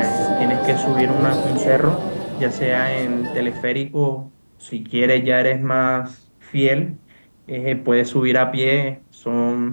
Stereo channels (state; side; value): inverted; both; correlation -1.00